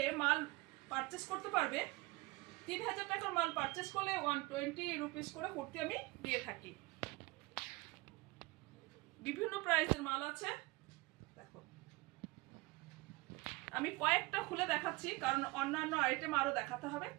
মাল পারচেস করতে পারবে। 3000 টাকার মাল পারচেস করলে 120 রুপিস করে কুর্তি আমি দিয়ে থাকি। বিভিন্ন প্রাইসের মাল আছে, দেখো আমি কয়েকটা খুলে দেখাচ্ছি, কারণ অন্যান্য আইটেম আরো দেখাতে হবে।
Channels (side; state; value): left; quieter; 23.3 dB